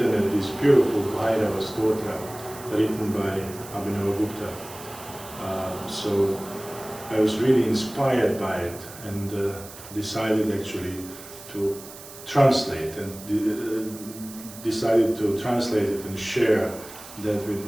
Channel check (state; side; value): noise; right; hiss, 16 dB below the sound